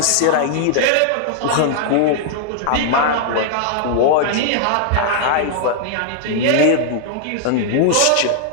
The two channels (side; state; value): both; different; correlation -0.01